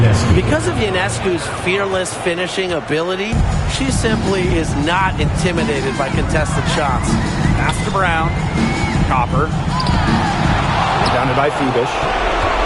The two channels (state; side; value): identical; both; correlation 1.00